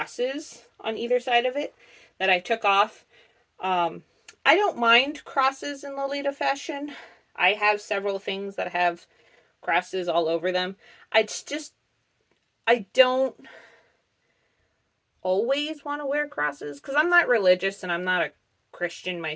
on either side of it that I took off. I don't mind crosses in Lolita fashion. I have several things that have crosses all over them. I don't always want to wear crosses because I'm not religious and I'm not a Christian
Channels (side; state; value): both; identical; correlation 1.00